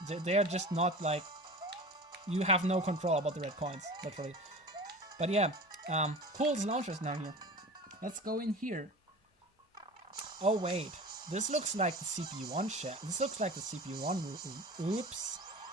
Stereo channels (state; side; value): normal; both; correlation 0.36